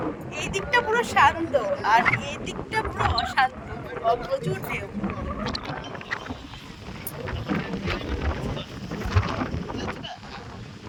এই দিকটা পুরো শান্ত আর এই দিকটা পুরো অশান্ত, প্রচুর ঢেউ।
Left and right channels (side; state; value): both; identical; correlation 1.00